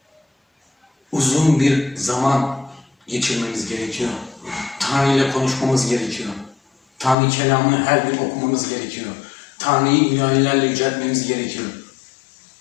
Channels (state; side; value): drops out; right; at 7.2 s